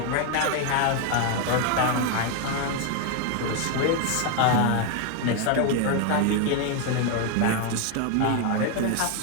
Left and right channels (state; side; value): different; both; correlation 0.01